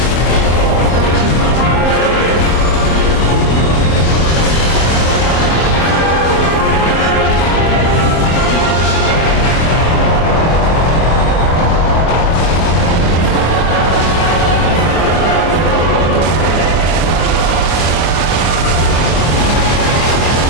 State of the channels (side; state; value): right; late; 25 ms